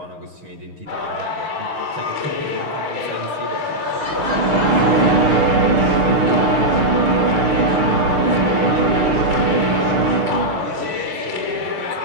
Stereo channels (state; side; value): late; left; 6.6 ms